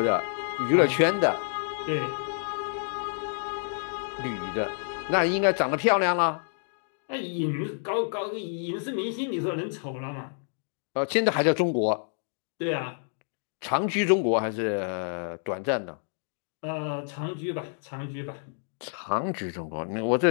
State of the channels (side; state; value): right; silent; digital silence